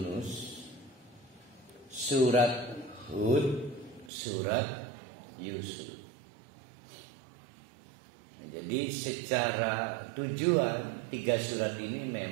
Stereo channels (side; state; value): left; drops out; at 4.1 s